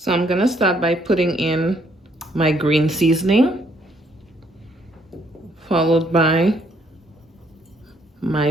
I'm gonna start by putting in my green seasoning, followed by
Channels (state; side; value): normal; both; correlation 0.68